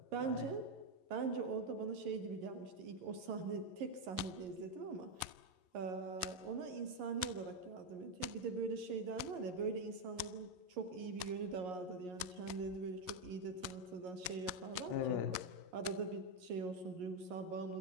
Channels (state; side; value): late; left; 11 ms